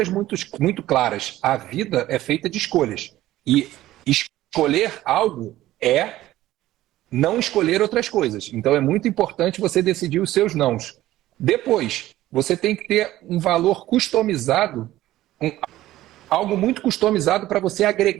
muito claras. A vida é feita de escolhas. E escolher algo é não escolher outras coisas. Então é muito importante você decidir os seus nãos. Depois, você tem que ter um valor customizado, algo muito customizado para você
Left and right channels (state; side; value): quieter; left; 15.2 dB